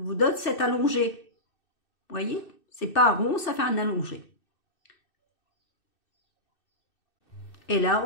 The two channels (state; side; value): late; right; 2.6 ms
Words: donne cet allongé. Voyez? C'est pas rond, ça fait un allongé. Et là,